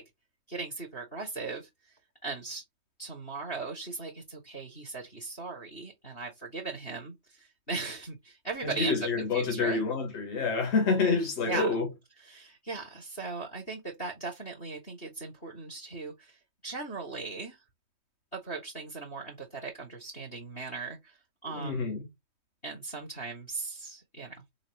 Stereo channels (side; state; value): right; late; 3.2 ms